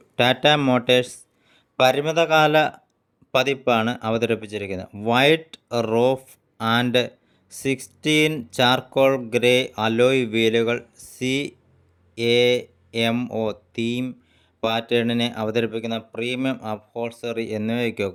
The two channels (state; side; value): identical; both; correlation 1.00